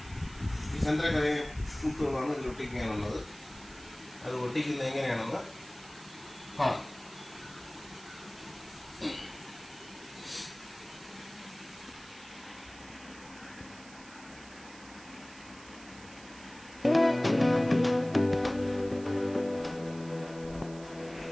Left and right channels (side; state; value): right; noise; hiss, 19 dB below the sound